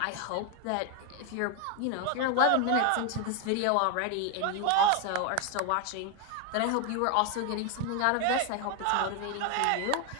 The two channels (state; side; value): different; both; correlation 0.01